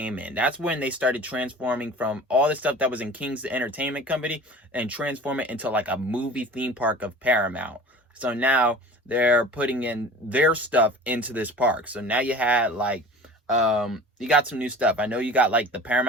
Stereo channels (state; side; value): normal; both; correlation 0.41